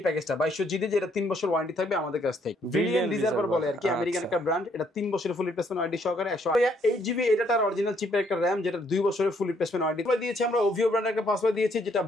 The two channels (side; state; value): both; normal; correlation 0.69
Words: প্যাকেজটা 2200G দিয়ে, যেটা 3 বছর ওয়ারেন্টি থাকবে আমাদের কাছ থেকে। ব্রিলিয়ান্ট রিজার্ভার বলে আর কি, আমেরিকান একটা ব্র্যান্ড। এটা 3 বছরের ফুল রিপ্লেসমেন্ট ওয়ারেন্টি সহকারে 108GB এটার অরিজিনাল চিপের একটা RAM, যেটা 2 বছরের ফুল রিপ্লেসমেন্ট ওয়ারেন্টি দিয়েছি আমরা। ওভিও ব্র্যান্ডের একটা পাসওয়ার্ড দিয়েছি, যেটা